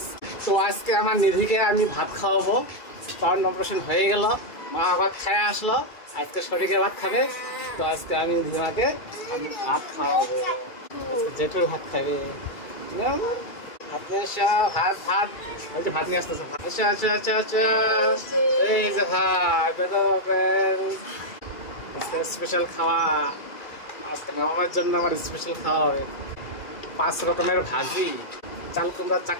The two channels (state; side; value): late; right; 2.3 ms